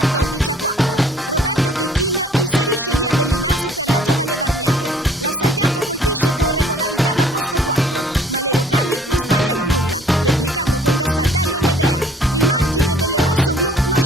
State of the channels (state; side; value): normal; both; correlation 0.55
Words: Roberto Checchin inserisce Lia Bellinaso per la giovane Varnier. La Salviato colpisce con regolarità da posto 4, ma le locali non sbagliano nulla, replicando con Gastaldello e Medea. Il margine delle rossoblù non